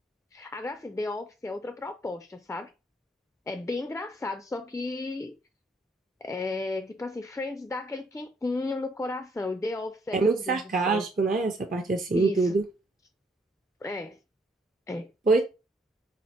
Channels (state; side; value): normal; both; correlation 0.68